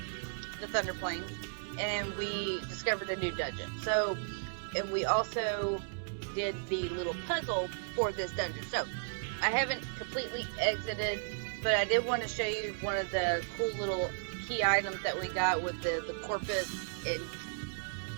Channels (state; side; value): silent; left; digital silence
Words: the Thunder Plains, and we discovered a new dungeon. So, and we also did the little puzzle for this dungeon. So, I haven't completely exited, but I did want to show you one of the cool little key items that we got with the Corpus